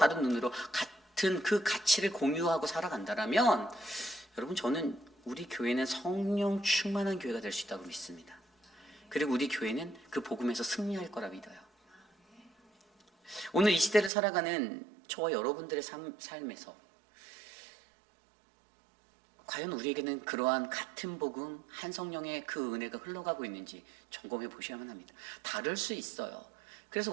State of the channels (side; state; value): left; drops out; at 14.1 s